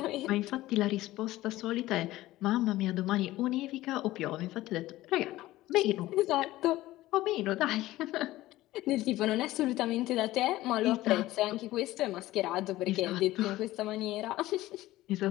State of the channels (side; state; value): right; quieter; 16.6 dB